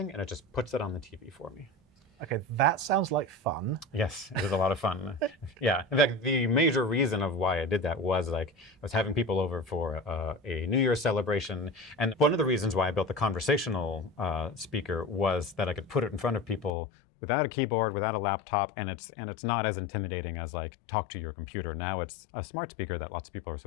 and it just puts it on the TV for me. Okay, that sounds like fun. Yes, it is a lot of fun. Yeah, in fact, the major reason of why I did that was like I was having people over for a New Year's celebration, and one of the reasons why I built the conversational speaker was that I could put it in front of people without a keyboard, without a laptop, and it's not as intimidating as like talk to your computer. Now it's a smart speaker that lots of people are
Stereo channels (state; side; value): drops out; right; at 16.7 s